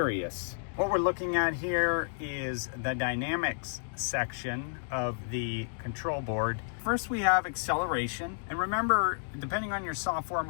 What we're looking at here is the dynamics section of the control board. First, we have acceleration. And remember, depending on your software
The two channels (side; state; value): right; silent; digital silence